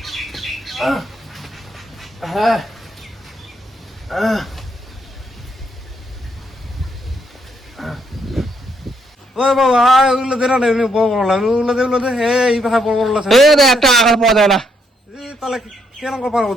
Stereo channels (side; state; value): both; normal; correlation 0.74